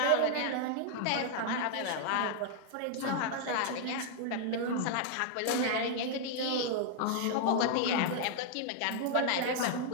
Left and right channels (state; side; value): different; both; correlation 0.00